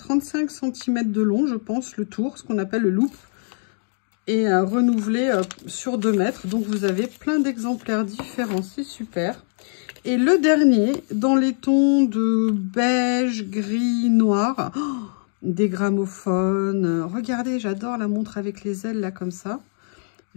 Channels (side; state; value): right; silent; 56 dB below the other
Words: cm de long, je pense, le tour, ce qu'on appelle le loop. Et renouvelé sur 2 mètres. Donc, vous avez plein d'exemplaires différents. C'est super. Et le dernier, dans les tons de beige, gris, noir. Oh, des gramophones. Regardez, j'adore la montre avec les ailes, là, comme ça.